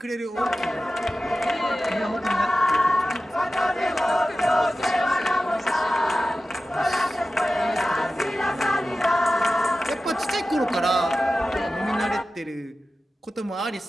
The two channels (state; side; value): normal; both; correlation 0.94